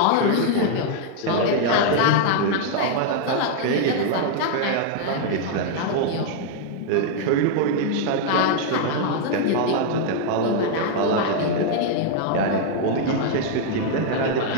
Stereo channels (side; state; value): both; different; correlation 0.00